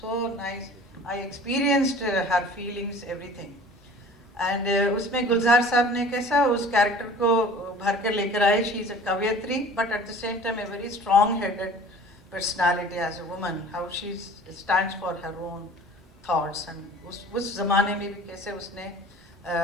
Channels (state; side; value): normal; both; correlation 0.45